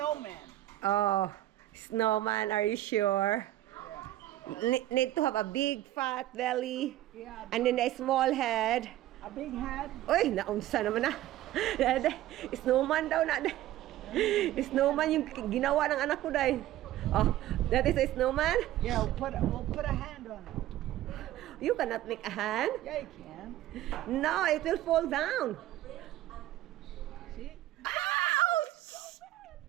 Oh, snowman, are you sure? Need to have a big fat belly Yeah, and then a small head. a big head. Uy, naunsa naman na. Snowman daw na. Snowman yung ginawa ng anak ko dahil. Oh, that is a snowman? Yeah, we'll put a hand on it. You cannot make a hand. Yeah, you can. No, it will fall down. See? Ouch!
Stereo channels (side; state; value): left; quieter; 14.3 dB